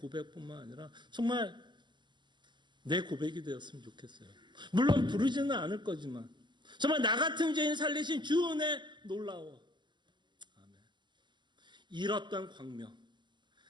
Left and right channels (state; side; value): late; left; 0.22 ms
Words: 아니라 정말 내 고백이 되었으면 좋겠어요. 물론 부르지는 않을 거지만 정말 나 같은 죄인 살리신 주 은혜 놀라워. 아멘. 잃었던 광명